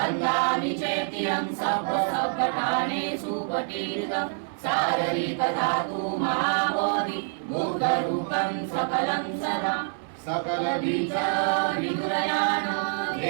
चेत्यं सप्तसप्तठानेषु पटीरितं शारीरिकधातु महाबोधि बुद्धरूपं सकलं सदा सकलबीज विदुरयान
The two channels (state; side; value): silent; left; digital silence